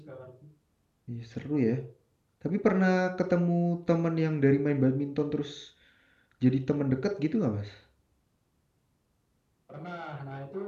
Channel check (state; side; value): identical; both; correlation 1.00